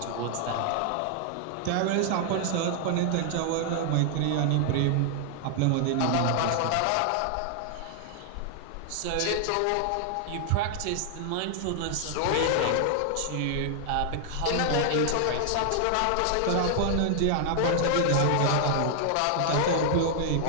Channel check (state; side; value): different; both; correlation 0.00